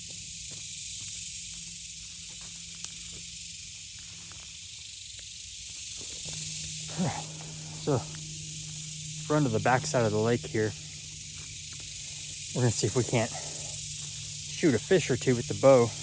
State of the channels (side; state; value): both; identical; correlation 1.00